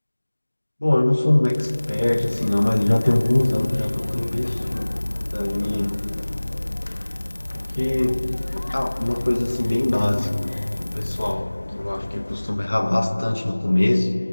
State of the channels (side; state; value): both; inverted; correlation -1.00